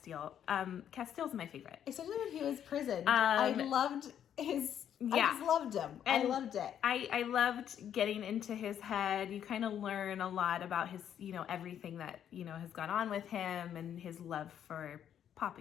Casteel's my favorite, especially when he was prisoned. I loved his. Yeah. I just loved him. And I loved it. I loved getting into his head. You kind of learn a lot about his, everything that, has gone on with him and his love for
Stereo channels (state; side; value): quieter; right; 9.6 dB